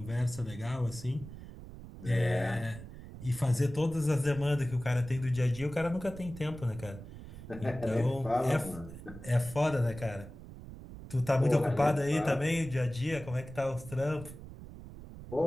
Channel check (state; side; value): noise; right; rumble, 14 dB below the sound